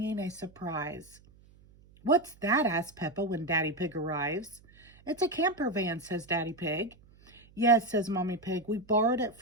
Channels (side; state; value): right; noise; hum, 26 dB below the sound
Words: a surprise. What's that? Asks Peppa when Daddy Pig arrives. It's a camper van, says Daddy Pig. Yes, says Mommy Pig. We borrowed it